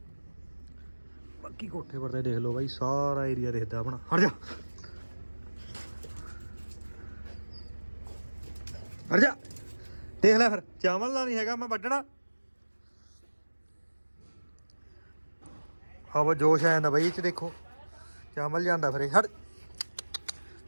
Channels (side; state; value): both; inverted; correlation -1.00